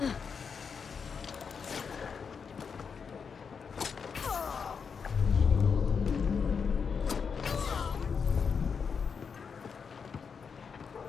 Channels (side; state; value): right; quieter; 6.0 dB